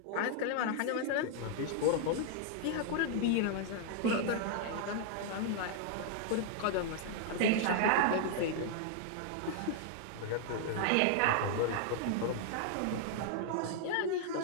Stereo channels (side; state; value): both; different; correlation 0.00